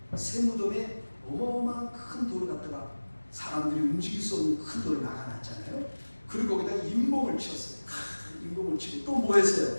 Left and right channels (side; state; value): both; inverted; correlation -1.00